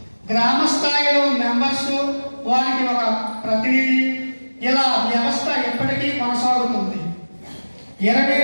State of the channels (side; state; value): both; inverted; correlation -1.00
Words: గ్రామ స్థాయిలో మెంబర్స్, వారికి ఒక ప్రతినిధి, ఇలా వ్యవస్థ ఎప్పటికీ కొనసాగుతుంది.